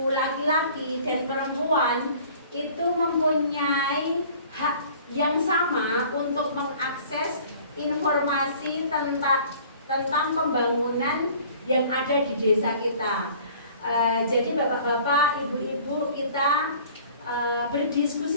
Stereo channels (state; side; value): inverted; both; correlation -0.50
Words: laki-laki dan perempuan itu mempunyai hak yang sama untuk mengakses informasi tentang pembangunan yang ada di desa kita. Jadi bapak-bapak, ibu-ibu, kita